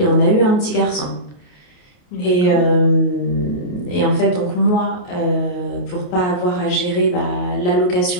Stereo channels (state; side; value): late; right; 28 ms